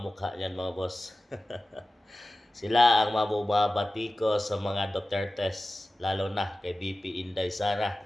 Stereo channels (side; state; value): both; normal; correlation 0.95